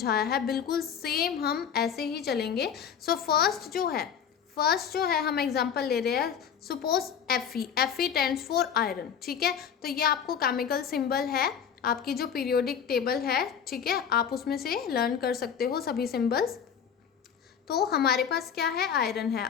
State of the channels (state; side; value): quieter; right; 7.8 dB